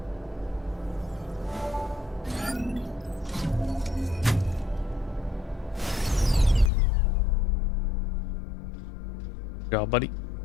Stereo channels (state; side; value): drops out; right; at 6.7 s